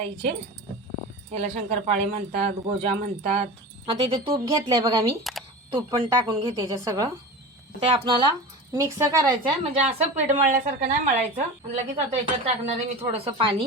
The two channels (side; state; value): both; normal; correlation 0.31